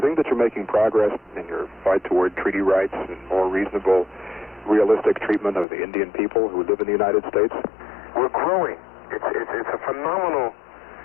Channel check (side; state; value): right; drops out; at 5.7 s